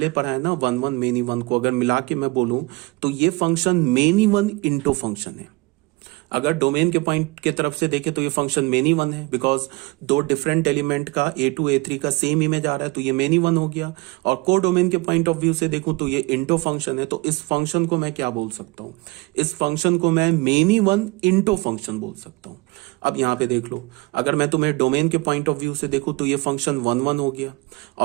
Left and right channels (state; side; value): quieter; left; 24.1 dB